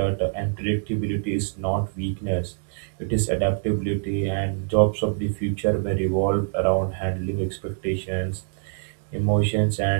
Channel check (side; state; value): left; silent; digital silence